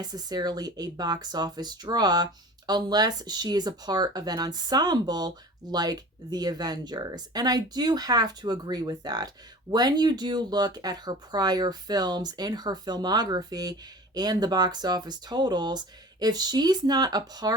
a box office draw unless she is a part of an ensemble like the Avengers. And I do have to agree with that. When you do look at her prior films in her filmography and the box office totals, if she's not a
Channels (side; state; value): both; normal; correlation 0.40